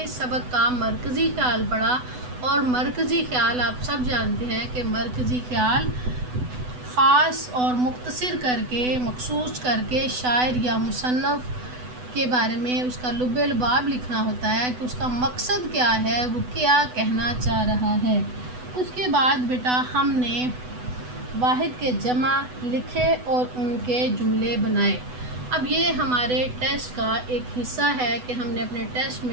اس سبق کا مرکزی خیال پڑھا، اور مرکزی خیال آپ سب جانتے ہیں کہ مرکزی خیال خاص اور مختصر کر کے، مخصوص کر کے شاعر یا مصنف کے بارے میں اس کا لب لباب لکھنا ہوتا ہے کہ اس کا مقصد کیا ہے، وہ کیا کہنا چاہ رہا ہے۔ اس کے بعد بیٹا ہم نے واحد کے جمع لکھے اور ان کے جملے بنائے۔ اب یہ ہمارے ٹیسٹ کا ایک حصہ ہے کہ ہم نے اپنے ٹیسٹ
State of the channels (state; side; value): late; left; 8.0 ms